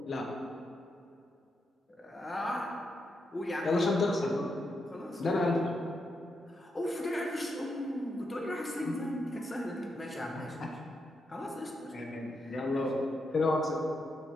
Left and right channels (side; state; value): both; normal; correlation 0.83